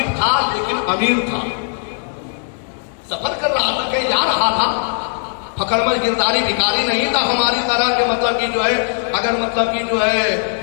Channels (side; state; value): right; silent; digital silence